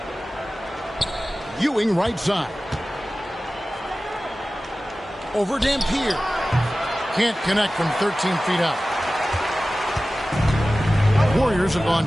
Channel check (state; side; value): normal; both; correlation 0.96